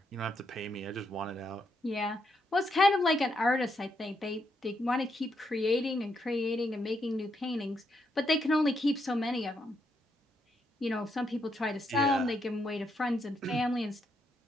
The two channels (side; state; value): both; normal; correlation 0.79